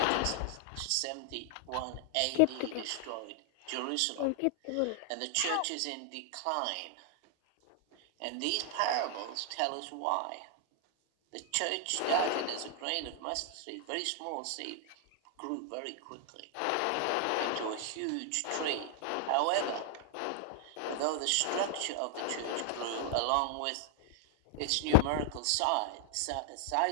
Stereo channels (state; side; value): different; both; correlation -0.01